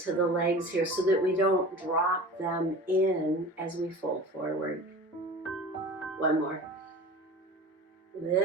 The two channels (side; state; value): both; normal; correlation 0.37